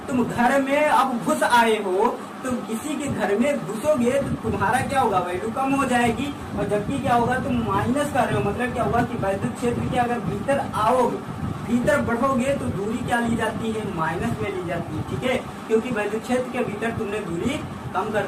तुम घर में अब घुस आए हो, तुम किसी के घर में घुसोगे तो तुम्हारा क्या होगा, वैल्यू कम हो जाएगी, और जबकि क्या होगा तुम माइनस कर रहे हो, मतलब क्या होगा कि वैद्युत क्षेत्र के अगर भीतर आओगे, भीतर बढ़ोगे तो दूरी क्या ली जाती है, माइनस में ली जाती है, ठीक है, क्योंकि वैद्युत क्षेत्र के भीतर तुमने दूरी कम कर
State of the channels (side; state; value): both; identical; correlation 1.00